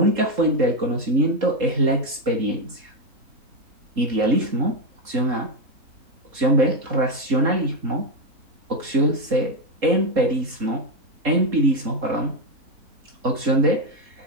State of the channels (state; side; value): late; left; 3.7 ms